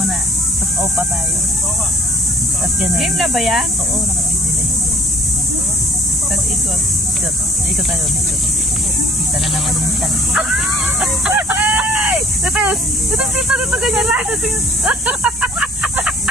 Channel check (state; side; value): normal; both; correlation 0.56